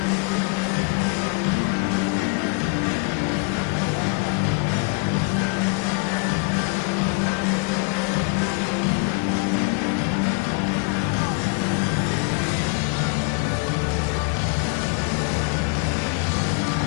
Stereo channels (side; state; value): right; quieter; 33.8 dB